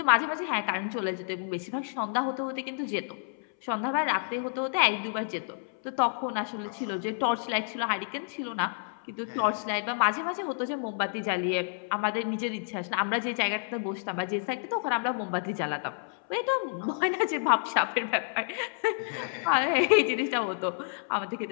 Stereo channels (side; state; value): right; silent; 58 dB below the other